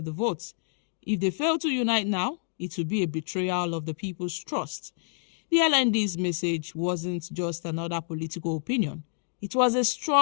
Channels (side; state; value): right; silent; 59 dB below the other